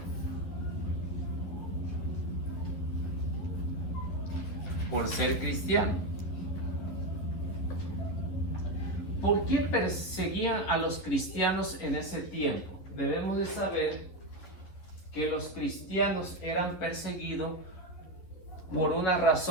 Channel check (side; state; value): right; late; 11 ms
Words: Por ser cristiano. ¿Por qué perseguían a los cristianos en ese tiempo? Debemos de saber que los cristianos eran perseguidos por una